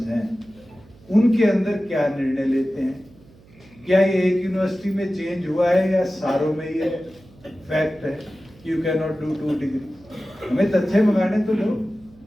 हैं उनके अंदर क्या निर्णय लेते हैं, क्या ये एक यूनिवर्सिटी में चेंज हुआ है या सारों में ये फैक्ट है कि you can not do 2 degree. हमें तथ्य मंगाने तो लो,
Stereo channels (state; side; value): noise; right; hum, 26 dB below the sound